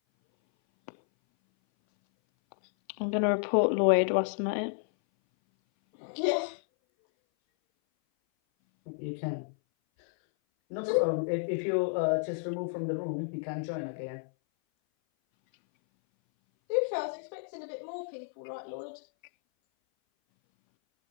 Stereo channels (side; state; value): right; silent; 57 dB below the other